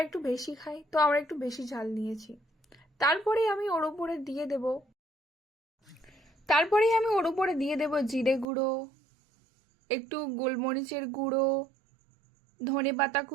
একটু বেশি খাই, তো আমরা একটু বেশি ঝাল নিয়েছি। তারপরেই আমি ওর উপরে দিয়ে দেব জিরে গুঁড়ো, একটু গোলমরিচের গুঁড়ো, ধনে পাতা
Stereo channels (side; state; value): left; drops out; at 8.5 s